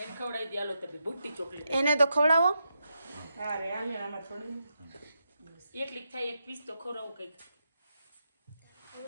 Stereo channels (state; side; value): inverted; both; correlation -0.84